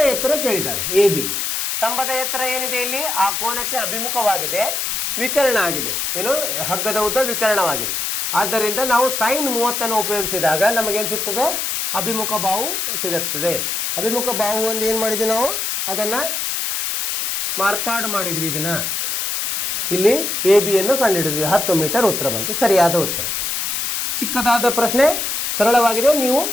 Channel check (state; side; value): noise; left; hiss, 1 dB below the sound